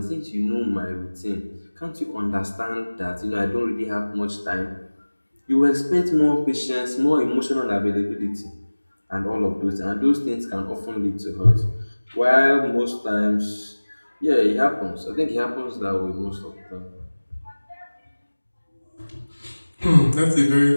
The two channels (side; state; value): both; inverted; correlation -1.00